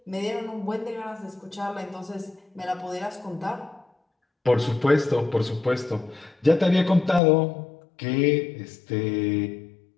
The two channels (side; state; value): right; drops out; at 7.2 s